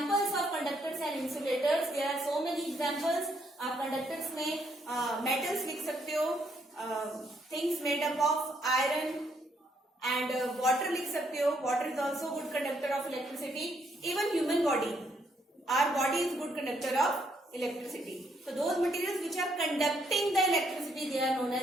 of conductors and insulators. There are so many examples. आप कंडक्टर्स में metals लिख सकते हो, things made up of iron and water लिख सकते हो. Water is also good conductor of electricity. Even human body, our body is good conductor of electricity. So those materials which are conducting the electricity, they are known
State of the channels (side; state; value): both; normal; correlation 0.72